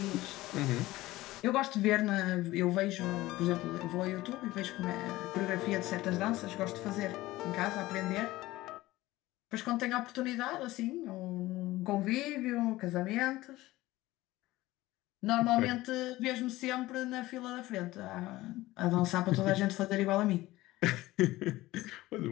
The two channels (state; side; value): quieter; right; 17.8 dB